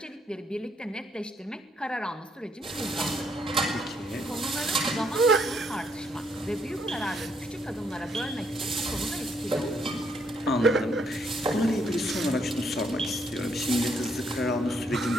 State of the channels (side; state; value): both; normal; correlation 0.72